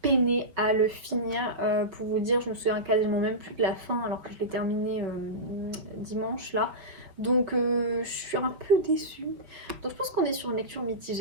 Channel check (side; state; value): left; late; 5.5 ms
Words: peiné à le finir. Pour vous dire, je me souviens quasiment même plus de la fin alors que je l'ai terminé dimanche là. Donc je suis un peu déçue. Donc je pense qu'on est sur une lecture